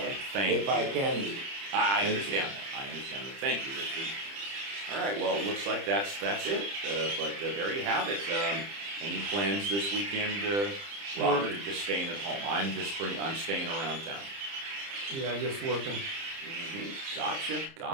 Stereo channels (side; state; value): left; late; 30 ms